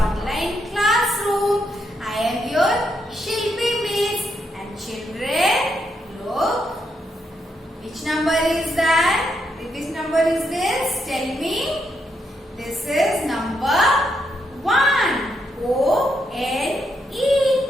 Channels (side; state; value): both; normal; correlation 0.79